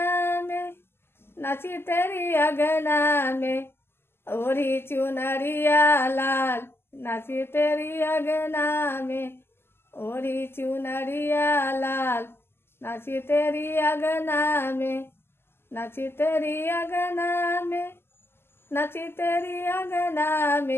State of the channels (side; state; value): right; late; 0.12 ms